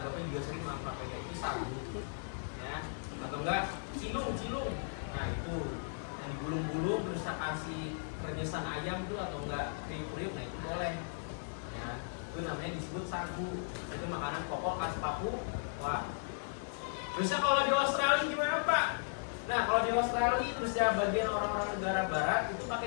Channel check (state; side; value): silent; right; digital silence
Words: juga sering makan papeda, itu sagu. Ya, atau enggak cilung. Nah itu yang digulung-gulung terus kasih renyesang ayam tuh atau enggak kriuk-kriuk, nah itu boleh. Ya, itu namanya disebut sagu. Itu makanan pokok khas Papua. Terusnya kalau di Australia gimana Pak? Nah kalau di Australia terus ya bagian orang-orang negara barat itu